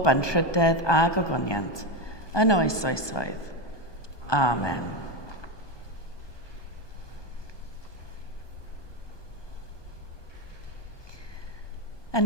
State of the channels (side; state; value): right; late; 1.2 ms